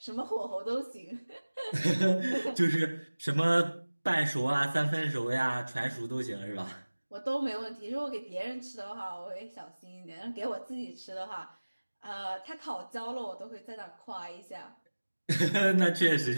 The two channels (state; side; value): inverted; both; correlation -1.00